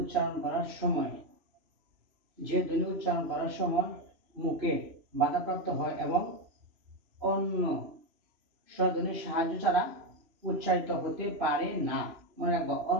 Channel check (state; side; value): late; left; 3.0 ms